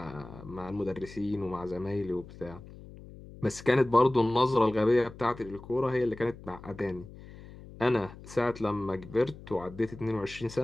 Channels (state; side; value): noise; left; hum, 17 dB below the sound